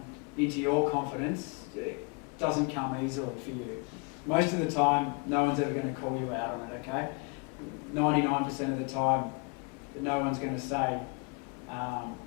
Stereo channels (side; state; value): right; quieter; 32.7 dB